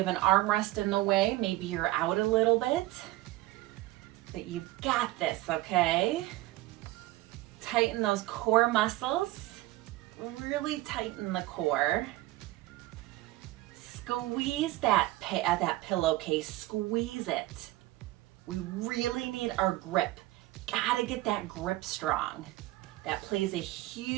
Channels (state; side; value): quieter; left; 18.0 dB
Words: an armrest in the way, maybe you're out a little bit. But you've got this, okay? Tighten those core muscles. Really tighten the core. Squeeze that pillowcase. Squeeze it. We really need our grip. Gotta get that grip strong. That plays a